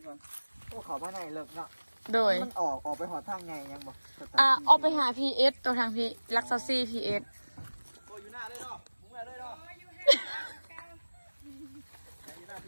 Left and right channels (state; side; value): inverted; both; correlation -1.00